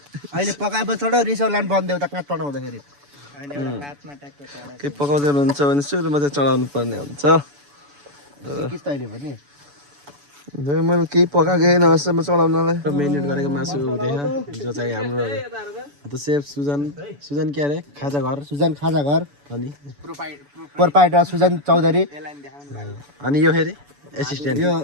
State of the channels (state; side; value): late; left; 7.0 ms